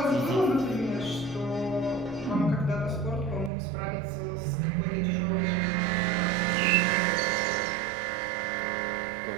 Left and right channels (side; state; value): left; drops out; at 3.5 s